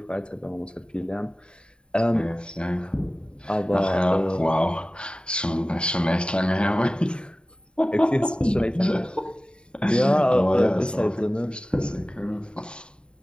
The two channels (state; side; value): late; right; 0.051 ms